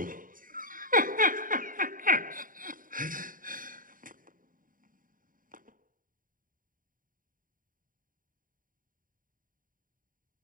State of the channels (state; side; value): late; left; 0.40 ms